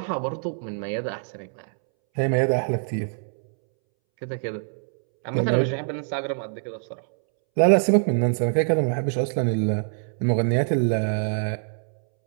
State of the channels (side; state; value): left; silent; 62 dB below the other